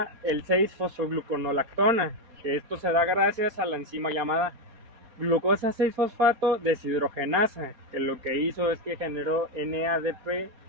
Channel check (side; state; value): left; late; 4.3 ms